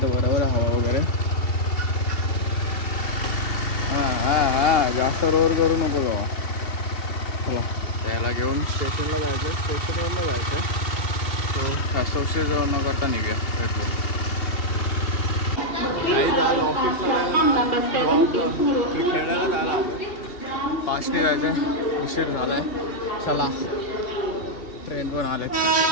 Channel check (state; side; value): late; right; 2.7 ms